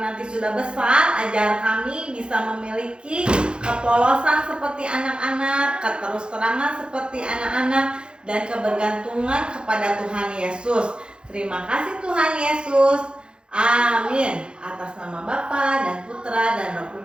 sudah besar, ajar kami bisa memiliki kepolosan seperti anak-anak, keterus-terangan seperti anak-anak, dan kebergantungan kepada Tuhan Yesus. Terima kasih Tuhan Yesus. Amin. Atas nama Bapa dan Putra dan Roh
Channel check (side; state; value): left; late; 0.052 ms